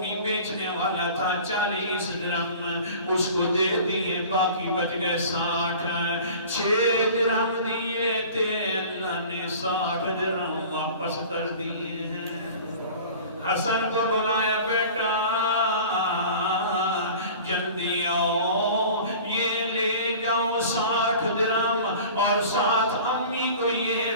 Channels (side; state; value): both; inverted; correlation -0.41